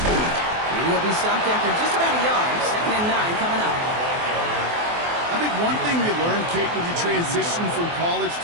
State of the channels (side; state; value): left; late; 24 ms